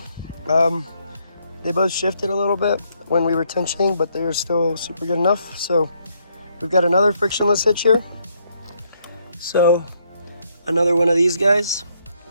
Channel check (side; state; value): both; inverted; correlation -0.73